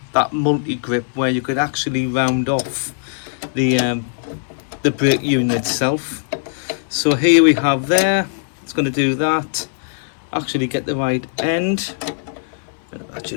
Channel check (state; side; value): silent; right; 63 dB below the other